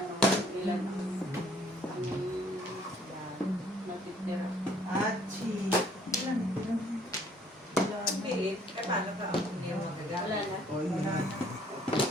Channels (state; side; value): normal; both; correlation 0.60